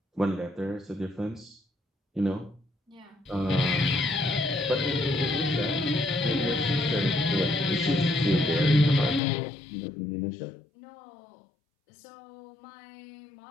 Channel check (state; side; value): drops out; right; at 9.2 s